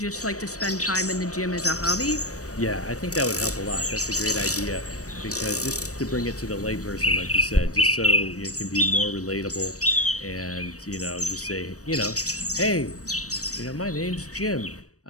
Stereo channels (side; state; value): right; late; 0.66 ms